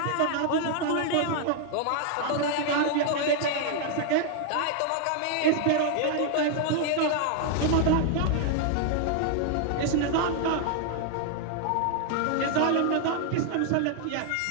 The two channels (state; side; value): different; both; correlation 0.00